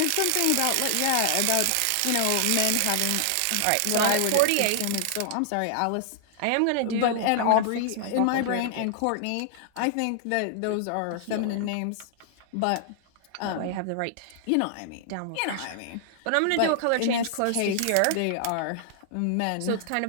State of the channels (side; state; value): both; different; correlation 0.00